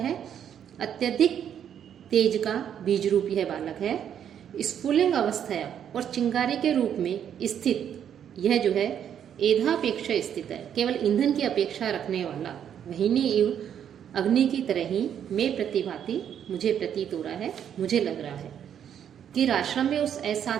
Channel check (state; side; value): quieter; left; 9.1 dB